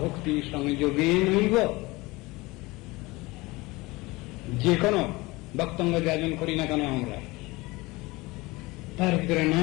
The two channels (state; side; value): quieter; right; 22.3 dB